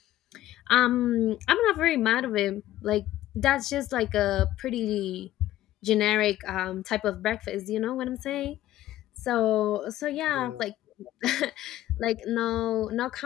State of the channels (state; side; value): quieter; right; 14.2 dB